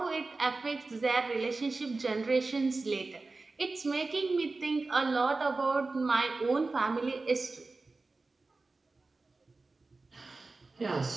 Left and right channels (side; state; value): left; quieter; 3.6 dB